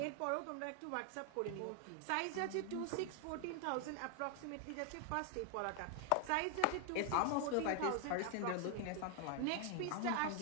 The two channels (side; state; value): both; different; correlation 0.00